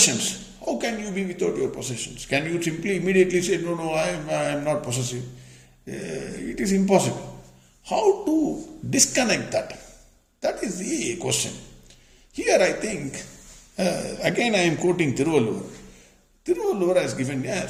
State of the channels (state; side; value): identical; both; correlation 1.00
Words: How can you be without your possessions? Can you simply immediately say, no, I am not possessive? It is impossible. How to disconnect that? That is the question. Here I think, again I am quoting Tiruvallur. Tiruvallur has given a